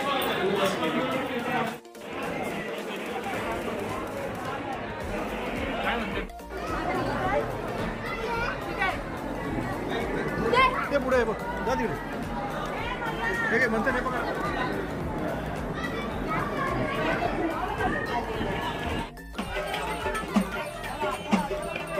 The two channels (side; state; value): both; identical; correlation 1.00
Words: पुढे आहे बघ जा तिकडे हे काय म्हणते नाही बघा